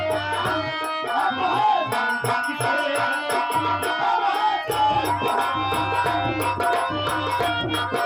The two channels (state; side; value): identical; both; correlation 1.00